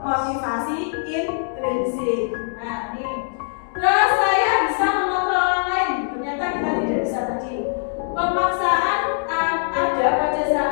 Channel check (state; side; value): silent; right; digital silence